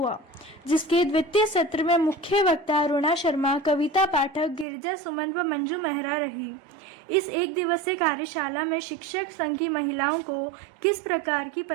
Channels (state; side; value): drops out; left; at 4.7 s